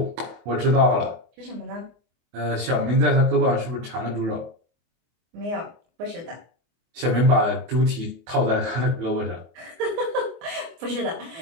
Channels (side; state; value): left; late; 24 ms